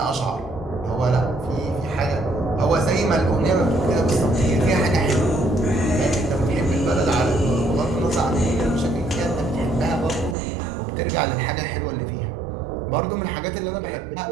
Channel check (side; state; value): left; drops out; at 10.4 s